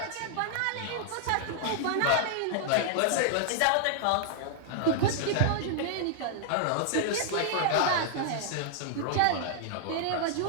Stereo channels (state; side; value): different; both; correlation -0.01